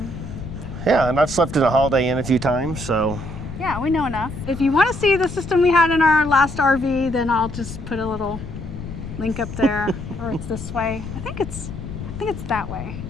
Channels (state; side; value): noise; left; rumble, 9 dB below the sound